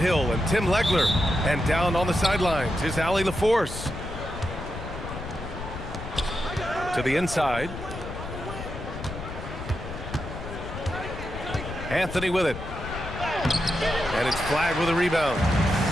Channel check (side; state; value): left; noise; rumble, 9 dB below the sound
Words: and Tim Legler. And down on the sidelines is Allie LaForce. To the inside. Anthony with it. And it's Flagg with a rebound.